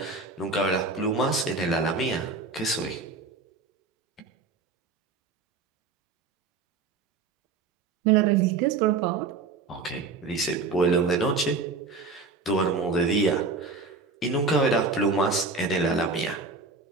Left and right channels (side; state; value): left; quieter; 4.2 dB